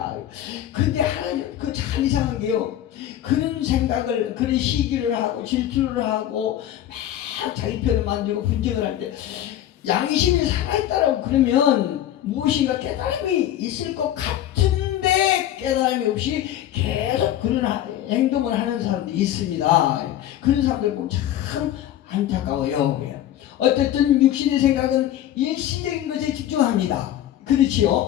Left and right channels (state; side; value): quieter; right; 12.0 dB